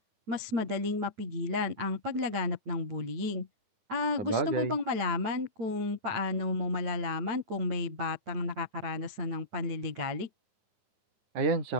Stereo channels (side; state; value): left; late; 8.9 ms